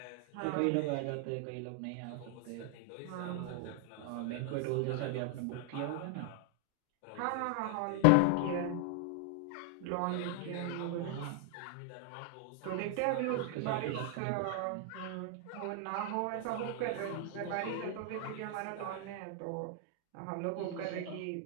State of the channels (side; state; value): both; different; correlation 0.00